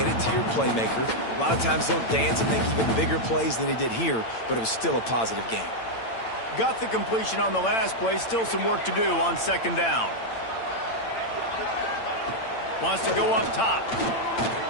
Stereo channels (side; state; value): right; late; 8.8 ms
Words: it to your playmaker. A lot of times he'll dance and make even bigger plays than he did here, but it was still a positive game. Got the completion on the last play. Still some work to do on 2nd down. Wants to go up top.